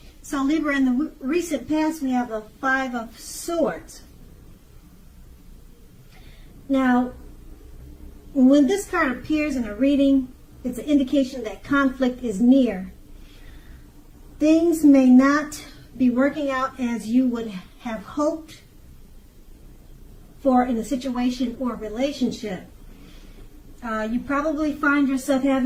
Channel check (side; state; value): both; identical; correlation 1.00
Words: So Libra, in the recent past, we have the Five of Swords. Now, when this card appears in a reading, it's an indication that conflict is near. Things may not be working out as you would have hoped for in a situation or relationship. You probably find yourself